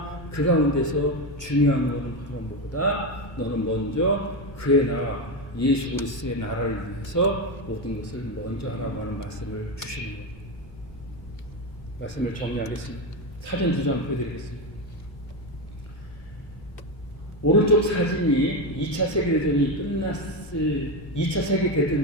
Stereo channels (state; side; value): normal; both; correlation 0.13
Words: 그 가운데서 중요한 것은 바로 뭐보다 너는 먼저 그의 나라 예수 그리스도의 나라를 위해서 모든 것을 먼저 하라고 하는 말씀을 주시는 거예요. 말씀을 정리하겠습니다. 사진 2장 보여드리겠습니다. 오른쪽 사진이 2차 세계대전이 끝났을 2차